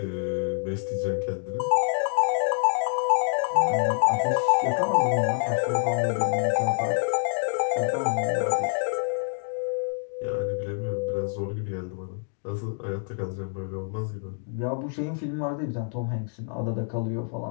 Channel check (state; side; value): silent; right; digital silence